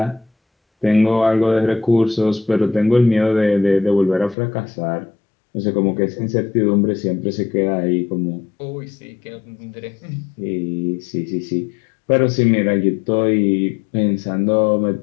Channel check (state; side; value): drops out; right; at 4.4 s